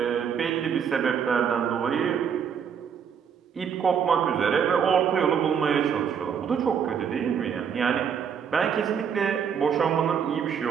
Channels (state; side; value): quieter; left; 7.4 dB